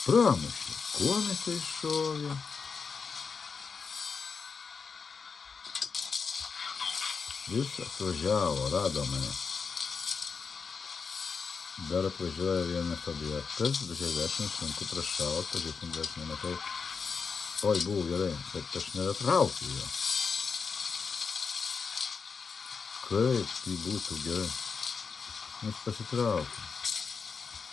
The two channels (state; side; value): quieter; right; 5.4 dB